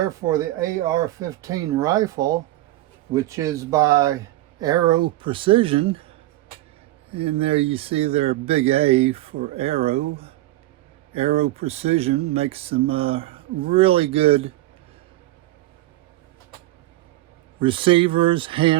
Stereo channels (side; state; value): left; quieter; 16.7 dB